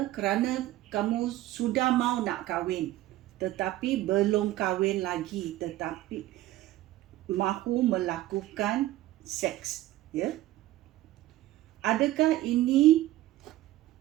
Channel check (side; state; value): left; quieter; 15.6 dB